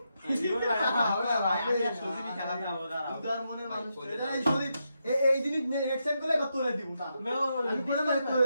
জীবন ভাই, হবে না ভাই, আমি আর সুজিবি খেলা খাবো, দাঁড়াও। উদার মনের মানুষ ভাই, এটা এই সদীপ এই জিনিস নেক্সট টাইম করলে এবার তোরে দিব না আমি করে মানে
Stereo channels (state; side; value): inverted; both; correlation -0.84